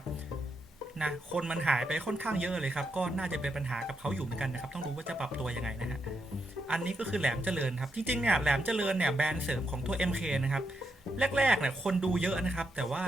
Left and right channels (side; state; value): both; normal; correlation 0.81